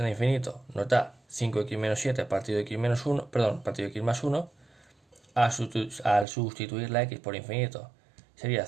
a infinito nos da 5x menos 7 partido x menos 1, perdón, partido x más 1. Al sustituir la x por infinito sería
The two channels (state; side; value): drops out; left; at 6.2 s